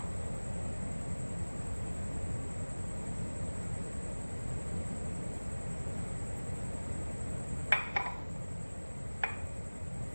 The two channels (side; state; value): both; inverted; correlation -1.00